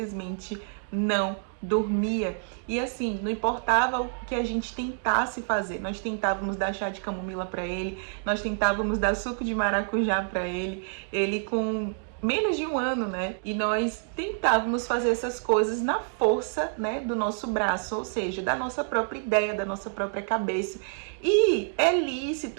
não dormia. E assim, não importava o que a gente tentasse fazer, nós tentávamos dar chá de camomila para ele, nós tentávamos dar suco de maracujá para ele, ele com menos de 1 ano, né? E nós tentávamos fazer essas coisas na força, né, do nosso braço, ou seja, da nossa própria ideia, da nossa própria cabeça. E é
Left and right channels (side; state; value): left; silent; 60 dB below the other